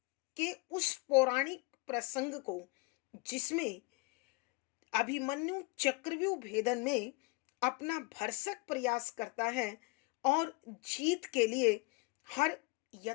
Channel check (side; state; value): right; quieter; 25.4 dB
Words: के उस पौराणिक प्रसंग को जिसमें अभिमन्यु चक्रव्यूह भेदन में अपना भरसक प्रयास करता है और जीत के लिए हर